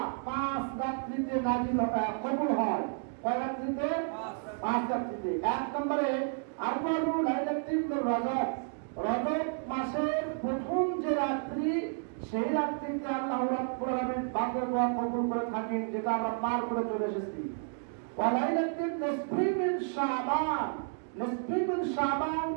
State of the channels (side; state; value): left; silent; 57 dB below the other